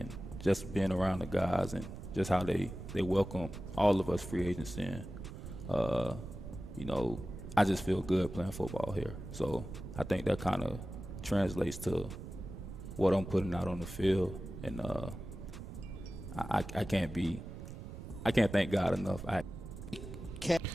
just being around the guys and just how they welcome all of us free agents in. I just feel good playing football here. So I think that kind of translates to what I'm putting out on the field, and I can't thank God enough.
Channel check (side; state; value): right; noise; rumble, 10 dB below the sound